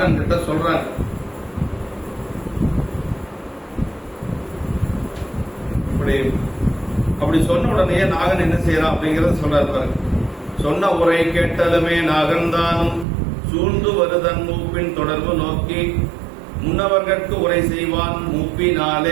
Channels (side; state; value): left; drops out; at 13.1 s